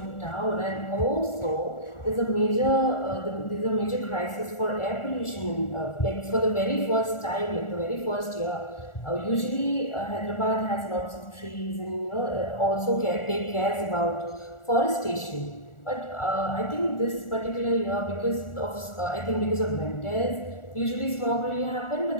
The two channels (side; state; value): right; late; 1.4 ms